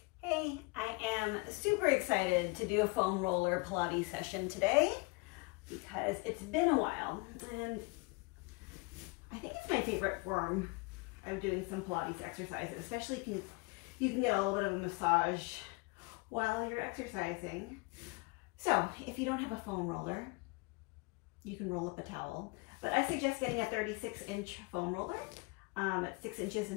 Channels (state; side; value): quieter; right; 27.5 dB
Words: Hey, I am super excited to do a foam roller Pilates session today because it's been a while and I think it's my favorite form of doing some Pilates exercises, especially if you can get a little bit of a massage while you're exercising. So if you don't have a foam roller, you can roll up a towel, but I suggest getting a 36-inch foam roller. It's 6 inches